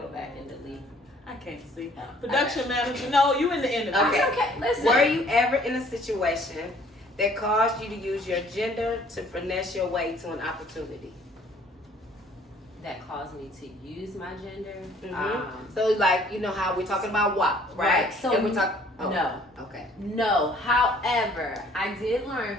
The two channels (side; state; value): both; normal; correlation 0.58